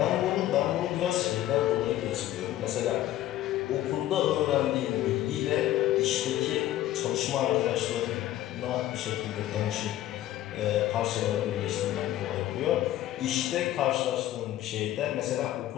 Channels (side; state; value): right; quieter; 13.7 dB